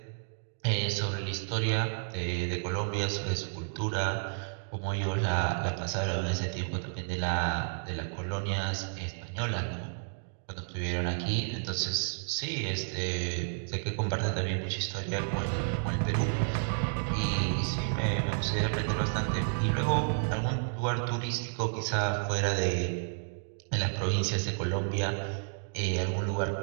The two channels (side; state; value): left; silent; digital silence